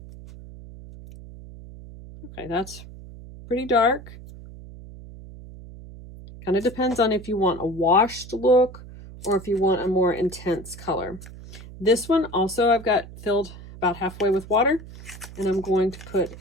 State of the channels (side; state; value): right; noise; hum, 16 dB below the sound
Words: Okay, that's pretty dark. Kind of depends on if you want a washed look or if you want a more intense color. This one also I've got filled about halfway with water, and I'm going to